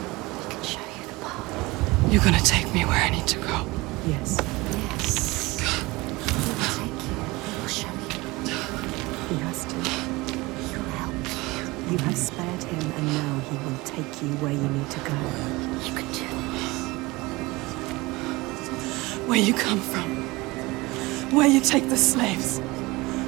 He can show you the path. You're gonna take me where I need to go. Yes. Yes. He will take you. He will show you. He has to. He will help you. You have spared him, and now he will take you where you need to go. You can do this. Where you come from. Where you take the slaves.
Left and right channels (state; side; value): quieter; left; 22.2 dB